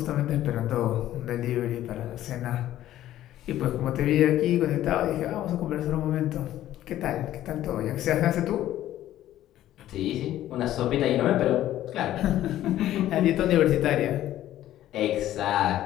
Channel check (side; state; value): right; quieter; 13.2 dB